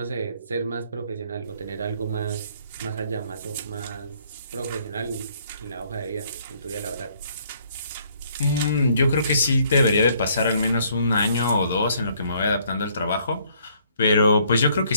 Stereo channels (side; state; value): both; inverted; correlation -0.65